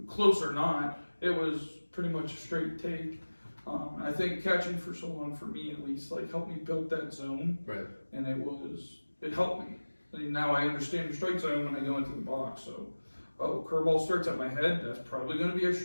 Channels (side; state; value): both; inverted; correlation -1.00